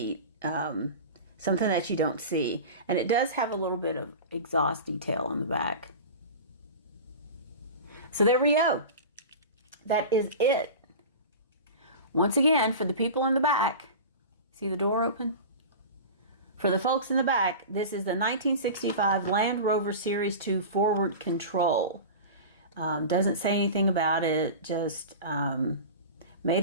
Something that you don't see. And it does have a little bit of exhaust detail on the back. So there we go. That is it. Once again, for the people in the back, see the door open? For the folks in the back, this is the 1965 Land Rover Series 2 forward control. Doesn't say anything about it, just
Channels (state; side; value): inverted; both; correlation -0.31